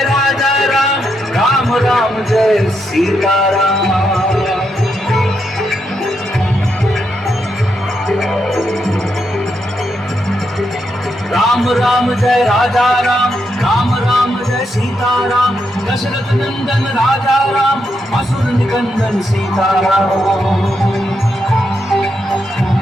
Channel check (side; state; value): both; normal; correlation 0.81